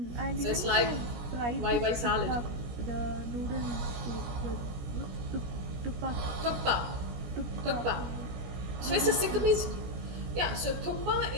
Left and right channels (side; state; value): left; late; 17 ms